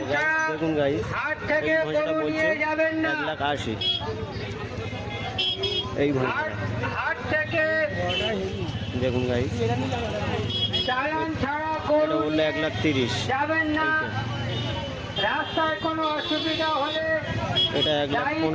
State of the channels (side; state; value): both; identical; correlation 1.00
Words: দেখুন গাইস, এই ভৈঁসাটা বলছে 1,80,000। এই ভৈঁসাটা দেখুন গাইস, এটা বললো 1,30,000। রাস্তায় কোনো অসুবিধা হলে এটা